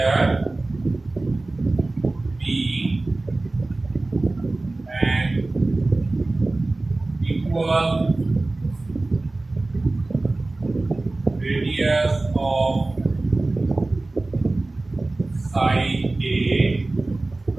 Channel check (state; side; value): quieter; left; 3.1 dB